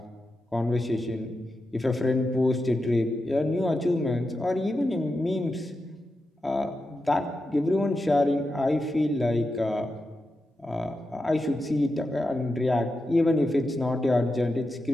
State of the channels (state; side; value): normal; both; correlation 0.89